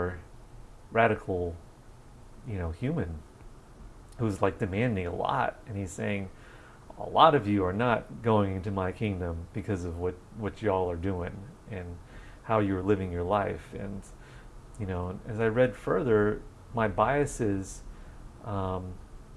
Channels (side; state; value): both; identical; correlation 1.00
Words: radical, human who's like demanding a lot, and he's saying, a lot of you are not going into my kingdom because of what y'all are doing and how you're living your life." And as I read further, my biases